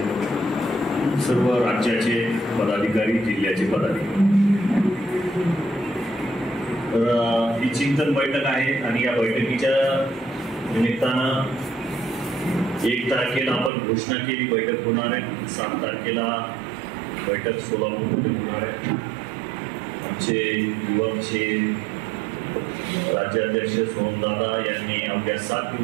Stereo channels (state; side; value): drops out; left; at 13.7 s